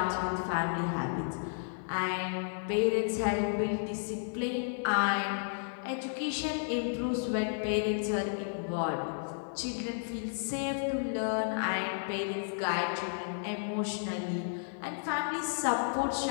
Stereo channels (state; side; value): silent; right; 56 dB below the other